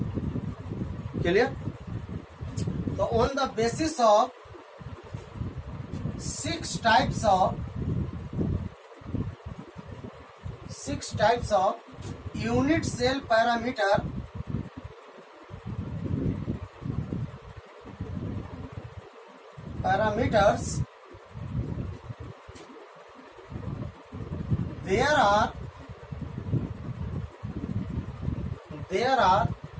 क्लियर? तो on the basis of 6 types of unit cell parameters, there are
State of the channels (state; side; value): identical; both; correlation 1.00